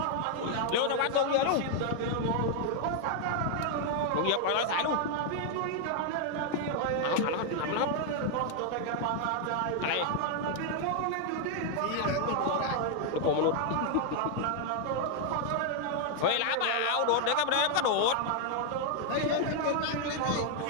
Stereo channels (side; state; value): both; different; correlation 0.00